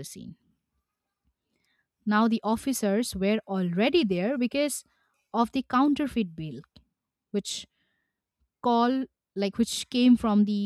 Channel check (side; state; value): both; identical; correlation 1.00